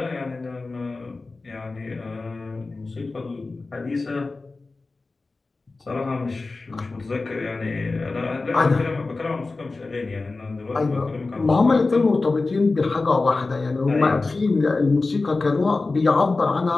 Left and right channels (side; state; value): right; quieter; 3.6 dB